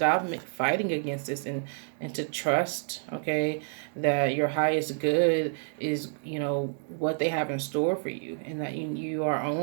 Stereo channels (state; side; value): silent; left; 59 dB below the other